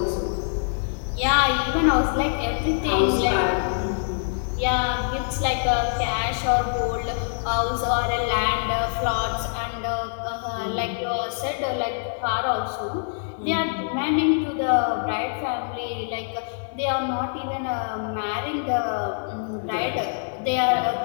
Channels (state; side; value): silent; right; digital silence